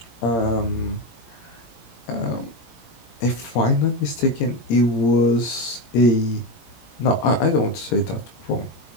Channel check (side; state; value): right; late; 17 ms